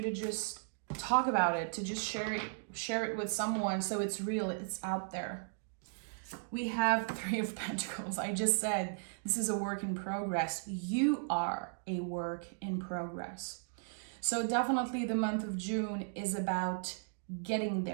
to just talk about it, to just share it with someone so it's real, it's out there. We have Three of Pentacles. I just said this is a work in progress. You are a work in progress. So definitely the month of June is about getting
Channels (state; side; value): silent; left; digital silence